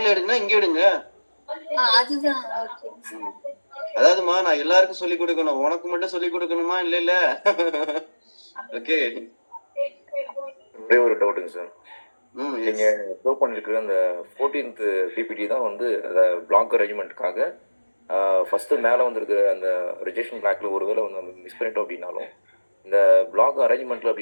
எடுங்கன்னா இங்க எடுங்க. அதுதான் ஓகே. அதாவதுமா, நான் எல்லாருக்கும் சொல்லி கொடுக்கணும், உனக்கு மட்டும் சொல்லி கொடுக்கணுமா? இல்ல ஓகே. ஒரே ஒரு டவுட்டுங்க சார். நீங்க ஷோ பண்ணிருக்கிற அந்த 14th பிபிடி தான் வந்து அந்த பிளாக் அரேஞ்ச்மெண்ட்டுக்காக ஃபர்ஸ்ட் மேலே வந்திருக்கிற அந்த ரிஜெக்ஷன் பிளாக்ல ஒருவேளை வந்து நம்ம மிஸ் பண்ணிட்டோம் அப்படின்னாலும், இந்த பிளாக் அரேஞ்ச்மெண்ட்ல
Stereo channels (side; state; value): both; inverted; correlation -1.00